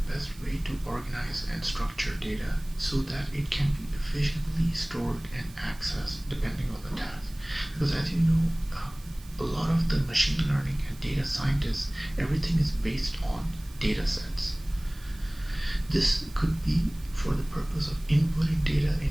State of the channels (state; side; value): noise; right; hiss, 23 dB below the sound